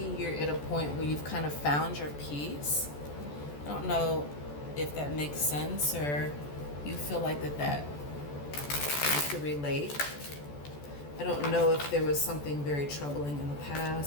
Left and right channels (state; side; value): late; right; 14 ms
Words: you're at a point where you've kind of found your peace. I don't know if that makes sense, or you feel like that you could relate. I don't know if there was something very troubling in the